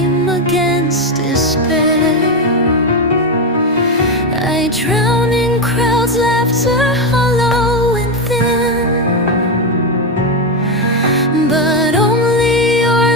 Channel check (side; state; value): both; normal; correlation 0.09